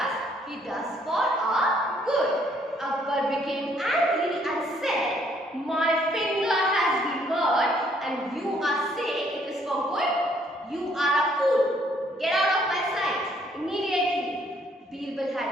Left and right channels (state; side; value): normal; both; correlation 0.66